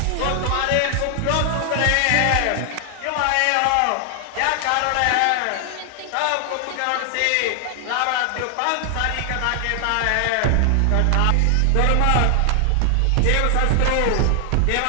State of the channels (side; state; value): both; different; correlation 0.00